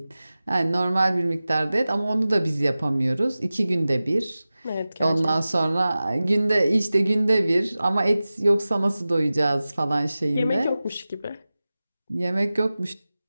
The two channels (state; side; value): inverted; both; correlation -0.96